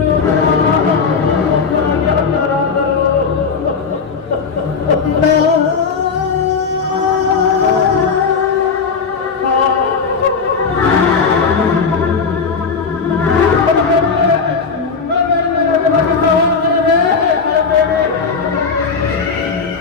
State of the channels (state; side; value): quieter; right; 5.3 dB